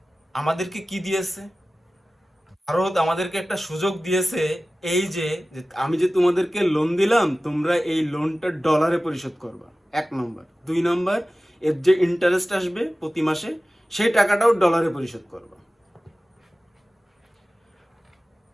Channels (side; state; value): both; normal; correlation 0.96